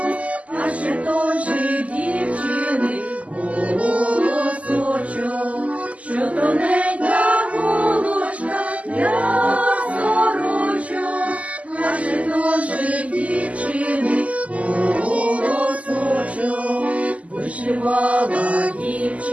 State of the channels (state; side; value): late; left; 0.068 ms